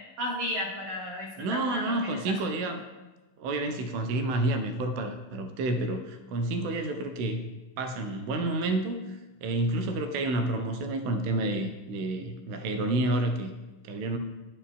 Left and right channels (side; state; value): left; late; 15 ms